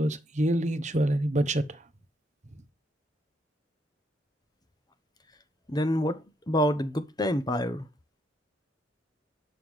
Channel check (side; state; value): both; normal; correlation 0.74